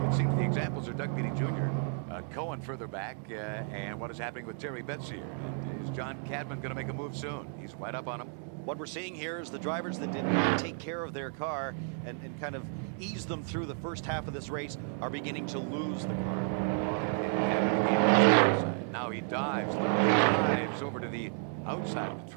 it seems the examples are Doug Beatty Jr., Cohen further back, and what is happening with Terry Betts here. And is John Cadman going to make a move soon? He's right up on him. What we're seeing here is the drivers that did not take care of their car and kind of ease them through the first half of this race are beginning to lose the car. Now he dives, literally dives over to the outside of the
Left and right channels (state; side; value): silent; left; 56 dB below the other